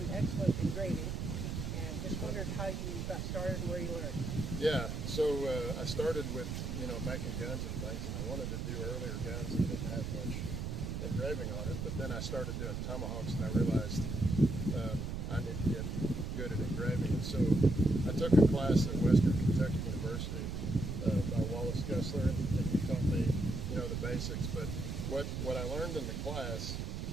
excellent engraving, and just wondered how you got started and where you learned. Yeah, so I started with, making guns and things, and I wanted to do earlier guns that didn't have much engraving on it, but then I started doing tomahawks, and I realized I need to get good at engraving. And so I took a class at Western Kentucky University by Wallace Gessler, and he taught me, the basics. But what I learned in the class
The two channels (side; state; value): right; noise; rumble, 3 dB below the sound